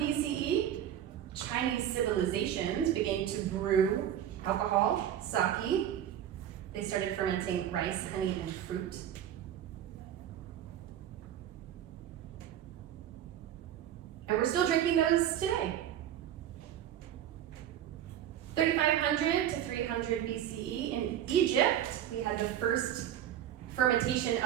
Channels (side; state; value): left; quieter; 10.8 dB